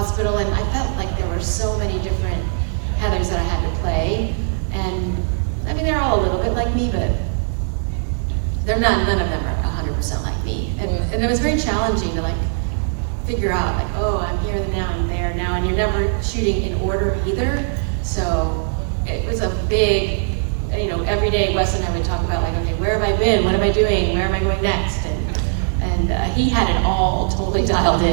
And I felt like there were so many different Heathers that I had to play. And, I mean, they're all a little bit like me, but none of them are 100% like me. And it was very challenging to, like, figure out, like, oh, I'm here now, I'm there now. And you're never shooting in order either. So it was a big, you know, every day Wes and I would talk about, like, okay, where have I been? What am I doing? Where am I going next? And he had it all totally dialed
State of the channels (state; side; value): silent; left; digital silence